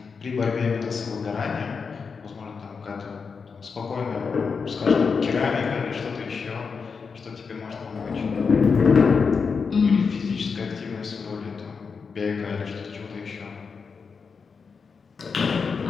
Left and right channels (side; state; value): right; quieter; 5.4 dB